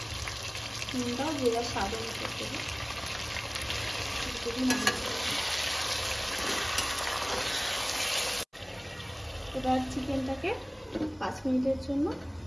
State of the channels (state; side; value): identical; both; correlation 1.00